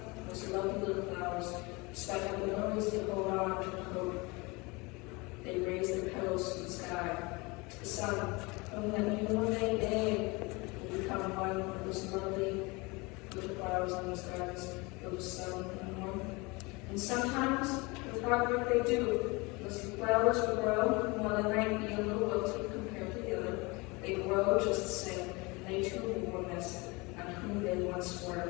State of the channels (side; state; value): right; quieter; 25.8 dB